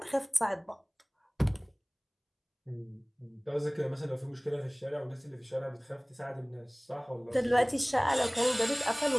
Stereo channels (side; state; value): both; identical; correlation 1.00